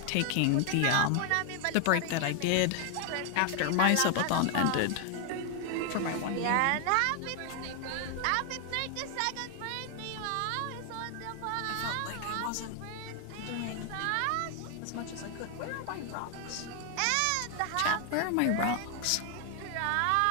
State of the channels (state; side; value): different; both; correlation 0.00